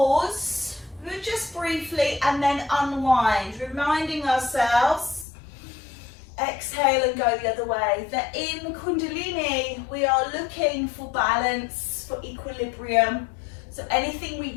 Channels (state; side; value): drops out; right; at 5.2 s